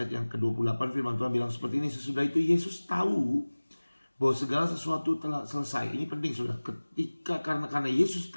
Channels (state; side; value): inverted; both; correlation -1.00